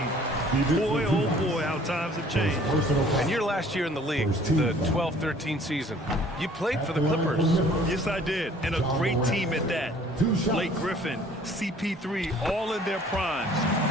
Boy, oh boy, how times have changed. And your last year in the league, the 12-13 season, you played for the Clippers. Yes, I did, and a great team at that. Blake Griffin, CP3, all in their primes.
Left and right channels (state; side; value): normal; both; correlation 0.54